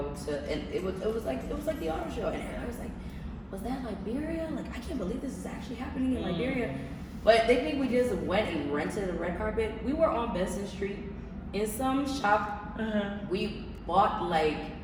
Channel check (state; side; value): identical; both; correlation 1.00